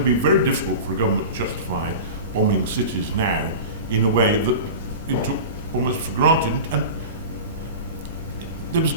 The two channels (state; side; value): inverted; both; correlation -0.31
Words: be very difficult for a government to justify bombing cities now in a way that it took almost for granted, and there was